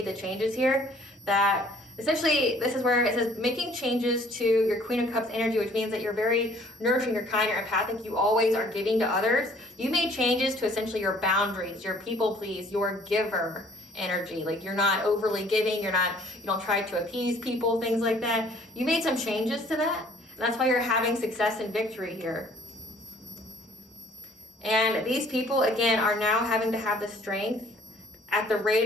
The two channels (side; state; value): both; normal; correlation 0.57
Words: the changes here that essentially, this is where it says making changes to your Queen of Cups energy, which means that you're very nurturing, you're kind, you're empathic, you always are giving to others. You made changes to essentially your boundaries, your people please, your giver energy. Like, you're not overly giving, you don't try to appease people, things like that. You made some changes to that. And that's why you're having success and victory here. And these people, again, are now having to have the strength at the